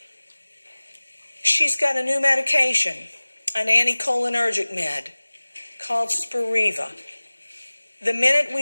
She's got a new medication, an anticholinergic med called Spiriva. The minute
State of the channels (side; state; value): both; inverted; correlation -1.00